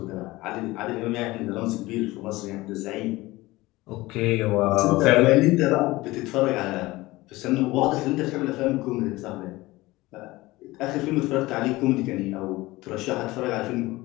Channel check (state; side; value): quieter; right; 19.7 dB